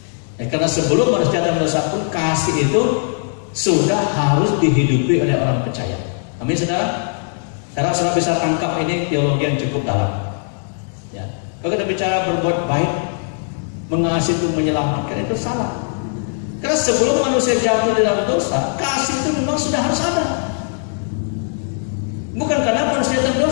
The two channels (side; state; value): right; silent; digital silence